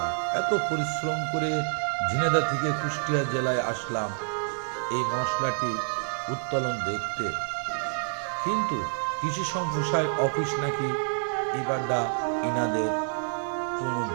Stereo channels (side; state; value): left; silent; digital silence